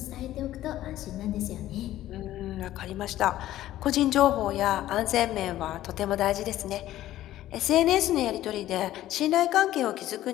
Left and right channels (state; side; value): quieter; right; 14.0 dB